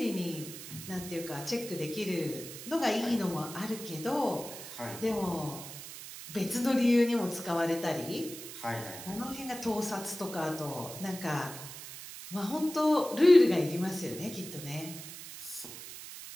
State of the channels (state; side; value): noise; right; hiss, 12 dB below the sound